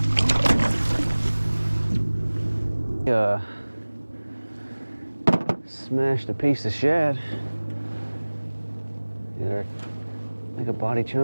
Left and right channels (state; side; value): inverted; both; correlation -1.00